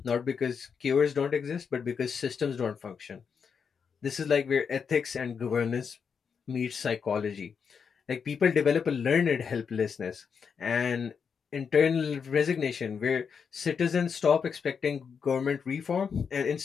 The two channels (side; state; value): right; quieter; 6.4 dB